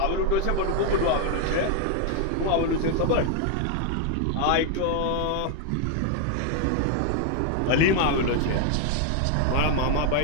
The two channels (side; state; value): both; different; correlation 0.00